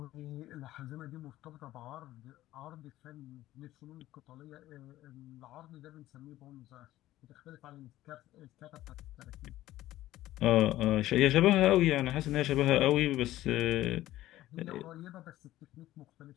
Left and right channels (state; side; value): quieter; right; 15.1 dB